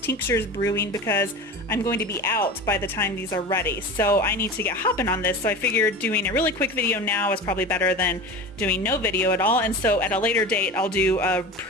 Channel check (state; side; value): normal; both; correlation 0.31